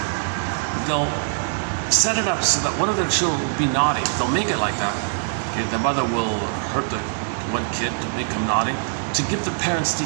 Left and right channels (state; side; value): silent; left; digital silence